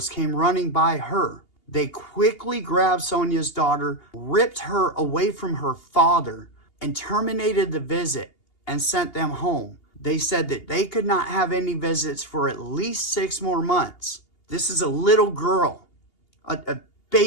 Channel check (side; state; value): right; late; 2.8 ms